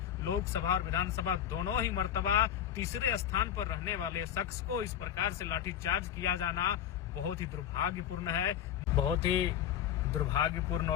लोकसभा और विधानसभा दोनों ही मर्तबा तीसरे स्थान पर रहने वाले शख्स को इस प्रकार से लाठीचार्ज किया जाना बहुत ही दुर्भाग्यपूर्ण है। बहुत ही दुर्भाग्यपूर्ण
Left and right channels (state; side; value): quieter; right; 10.1 dB